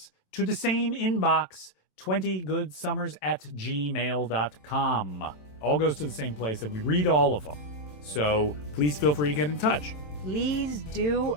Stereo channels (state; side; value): late; right; 27 ms